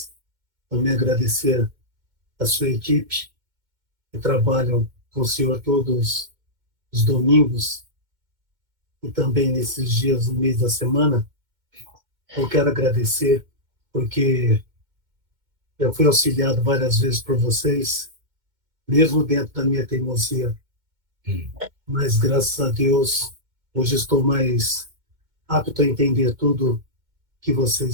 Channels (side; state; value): left; late; 2.2 ms